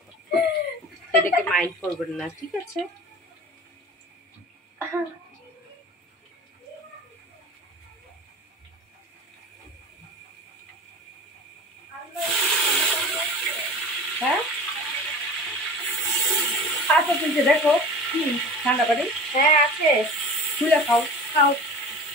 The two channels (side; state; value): both; normal; correlation 0.36